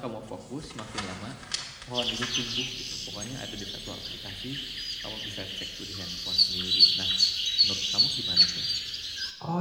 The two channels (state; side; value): identical; both; correlation 1.00